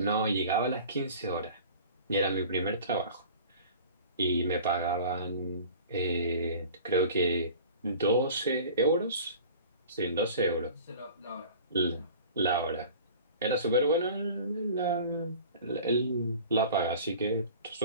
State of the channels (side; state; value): both; inverted; correlation -0.42